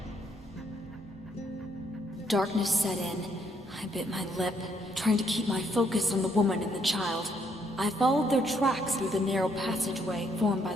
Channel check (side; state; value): both; normal; correlation 0.71